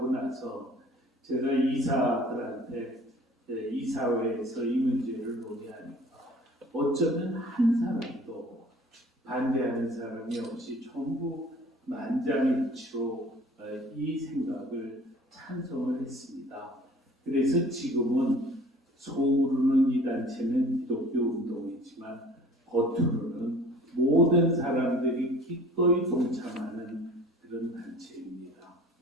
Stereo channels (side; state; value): both; normal; correlation 0.48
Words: 나서 제가 이사들한테 이사회에서 이 문제를 논의하니까 어쩌면 한 사람도 반대하는 사람이 없이 전부 만장일치로 이 생각을 찬성을 했습니다. 그래서 지금은 속으로는 이 단체는 기독교 운동이지만 겉으로는 모든 사람들이 기꺼이 동참하는 그런 단체입니다.